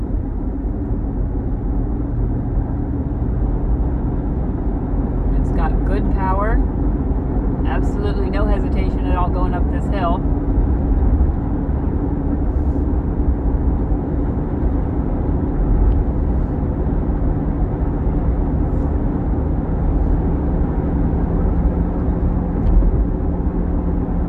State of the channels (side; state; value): both; identical; correlation 1.00